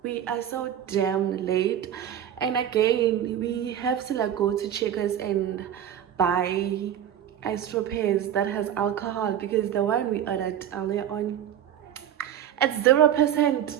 We are so damn late. And again, we have to like go to Checkers and buy isopropes that has alcohol because the one we ordered earlier on, it's 0%.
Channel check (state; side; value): quieter; left; 10.1 dB